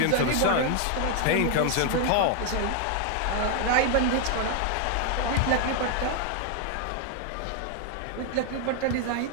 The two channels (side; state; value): both; different; correlation 0.00